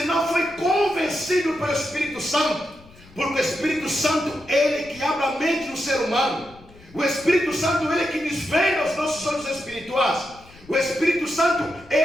não foi convencido pelo Espírito Santo. Porque o Espírito Santo, ele que abre a mente do ser humano. O Espírito Santo, ele que desvenda os nossos olhos espirituais. O Espírito Santo,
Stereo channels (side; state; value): left; noise; rumble, 23 dB below the sound